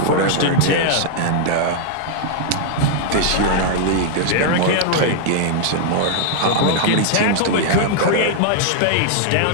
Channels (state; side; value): different; both; correlation 0.00